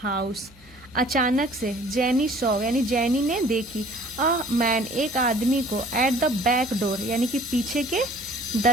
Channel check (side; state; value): right; noise; hum, 28 dB below the sound